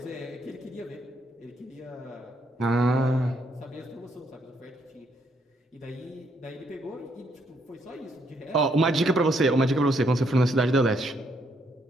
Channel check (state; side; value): normal; both; correlation 0.73